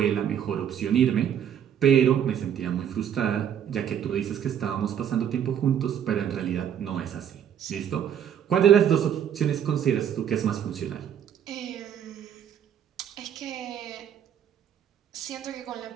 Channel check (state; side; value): quieter; left; 9.2 dB